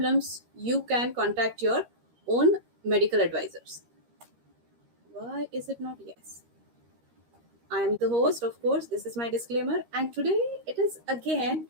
You can contact your own medical advisors. Why is it not yes? I am the host, of course. This is my disclaimer. And today it is again,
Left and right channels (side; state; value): left; late; 13 ms